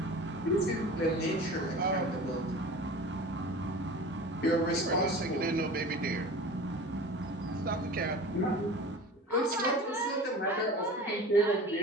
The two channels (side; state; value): both; normal; correlation 0.37